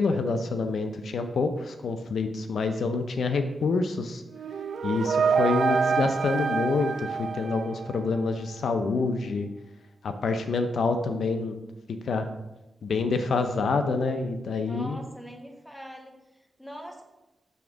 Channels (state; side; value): normal; both; correlation 0.78